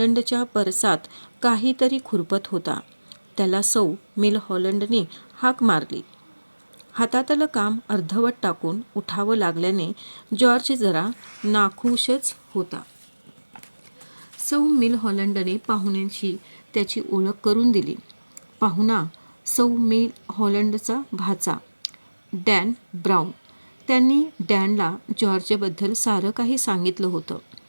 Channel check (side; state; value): both; inverted; correlation -1.00